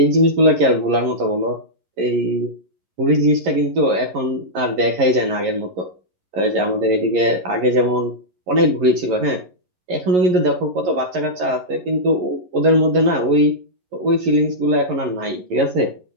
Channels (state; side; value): late; left; 11 ms